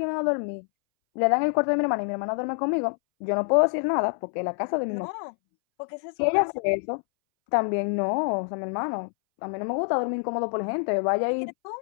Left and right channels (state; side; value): silent; right; 61 dB below the other